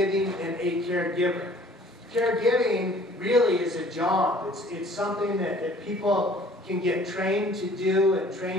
and a caregiver. Caregiving really is a job. It's something that people can get trained to do and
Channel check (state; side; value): normal; both; correlation 0.53